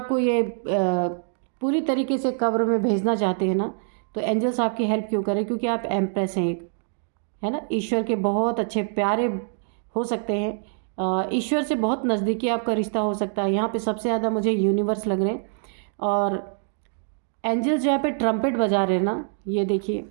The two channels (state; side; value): silent; left; 62 dB below the other